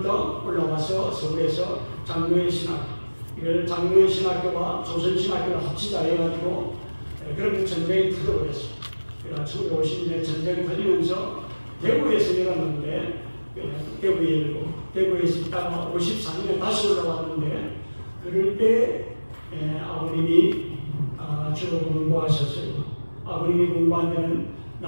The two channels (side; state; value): both; inverted; correlation -1.00